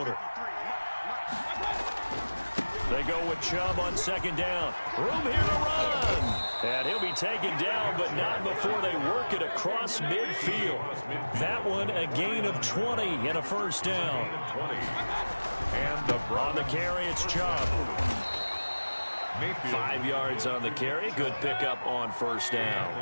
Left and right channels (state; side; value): inverted; both; correlation -1.00